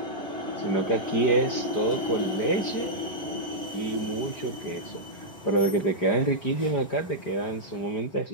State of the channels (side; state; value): right; late; 4.9 ms